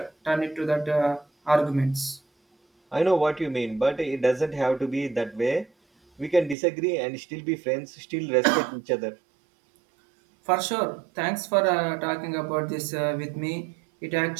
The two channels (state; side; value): drops out; left; at 6.6 s